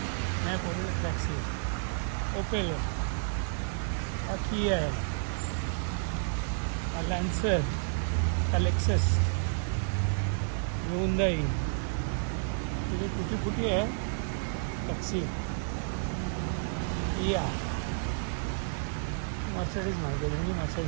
नाही. पोलीस टॅक्सी, ओपेल आहे, हा किया आहे, हा लॅन्सर, हा लेक्सस, हुंडाई. तिथे फुटी फुटी आहे टॅक्सी. किया, मर्सिडीज माहिती आहे, दोन्ही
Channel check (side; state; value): left; silent; digital silence